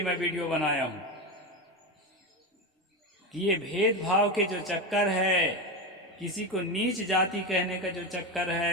मैं वीडियो बनाया हूं कि ये भेदभाव के जो चक्कर है, किसी को नीच जाति कहने का जो चक्कर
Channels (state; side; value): normal; both; correlation 0.17